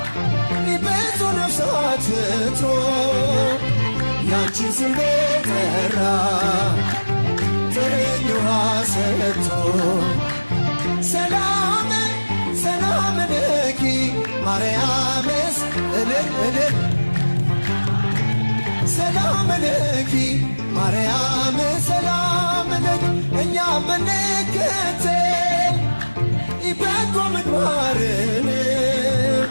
ብዙ ነፍሳት ፍቶ ያንቺን ስም ጠራ ጥርኝ ውሃ ሰጥቶ ሰላም ሰላም ለኪ ማርያምስ እልል እልል ሰላም ለኪ ማርያም ሰላም ለኪ እኛ ብንከተል በጎ ምግባርን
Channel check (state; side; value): inverted; both; correlation -1.00